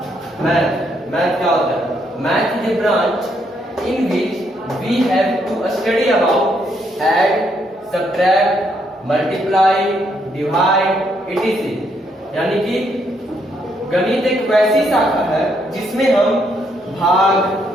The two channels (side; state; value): both; normal; correlation 0.74